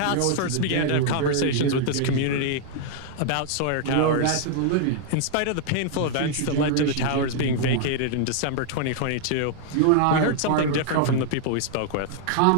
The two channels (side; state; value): both; different; correlation 0.00